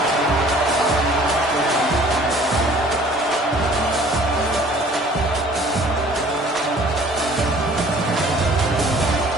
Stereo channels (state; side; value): normal; both; correlation 0.53